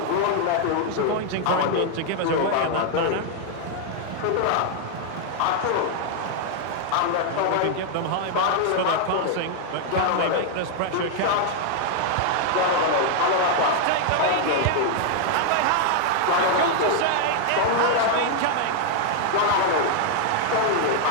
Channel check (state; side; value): different; both; correlation 0.00